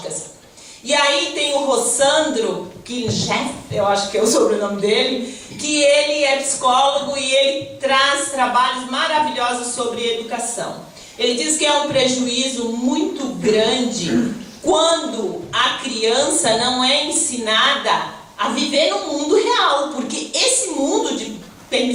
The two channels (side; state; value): both; identical; correlation 1.00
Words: E aí tem o Rossandro Kincheff, eu acho que é o sobrenome dele, que ele é psicólogo e ele traz trabalhos maravilhosos sobre educação. Ele diz que é um prejuízo muito grande quando a criança não é ensinada a viver no mundo real, porque esse mundo de